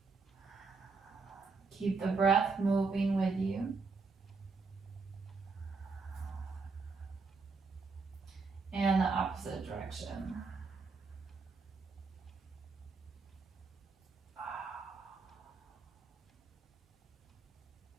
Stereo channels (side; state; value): left; quieter; 4.4 dB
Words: Keep the breath moving with you. And the opposite direction.